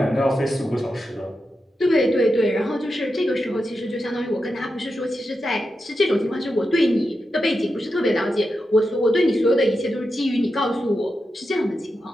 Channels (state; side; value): normal; both; correlation 0.88